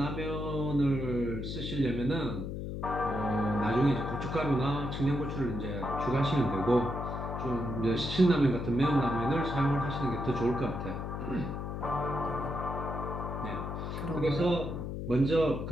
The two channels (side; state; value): left; noise; hum, 5 dB below the sound